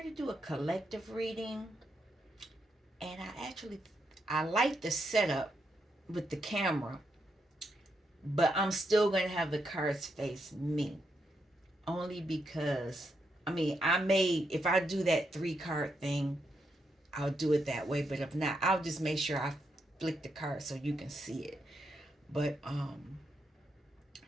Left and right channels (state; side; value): normal; both; correlation 0.81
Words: to do a collective reading, and I like the setup with the camera, but I'm still going to have the cards face me, only because if I do that three card thing, I'll do it that way. But if not, I'll just make sure I flick the card so you can see it. But